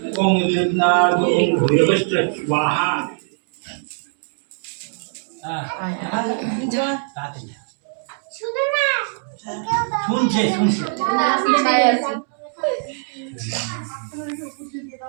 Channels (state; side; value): silent; left; 61 dB below the other